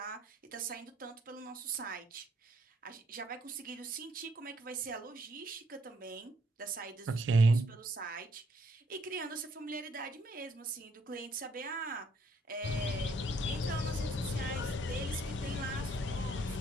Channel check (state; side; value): normal; both; correlation 0.68